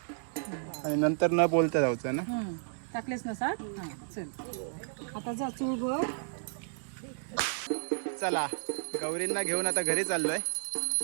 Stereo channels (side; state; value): left; silent; digital silence